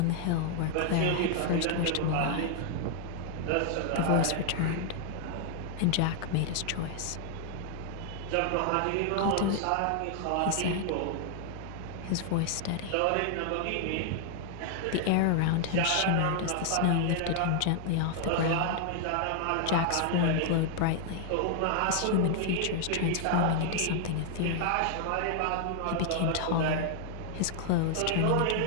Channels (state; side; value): different; both; correlation 0.00